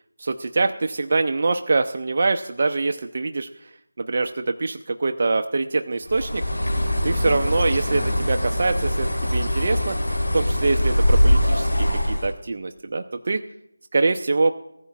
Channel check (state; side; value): inverted; both; correlation -0.96